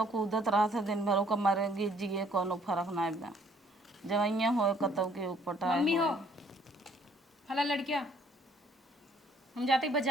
कूदत रहा था दिन भर, ओका मरे गिर जिए कोनो फर्क नहीं बा। जवैया हो कतौ के उपटाए मम्मी हो हो। फला लड़किया हम जाते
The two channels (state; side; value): normal; both; correlation 0.63